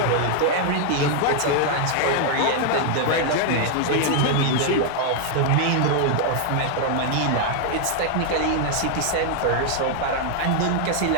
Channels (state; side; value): different; both; correlation 0.00